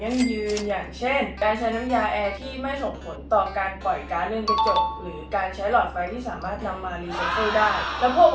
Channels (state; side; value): identical; both; correlation 1.00